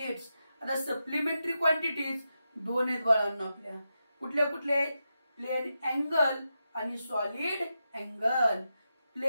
आता सप्लिमेंटरी क्वांटिटीज दोन आहेत बाळांनो आपल्या. कुठले कुठले? प्लेन अँगल आणि सॉलिड अँगल.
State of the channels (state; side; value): inverted; both; correlation -0.88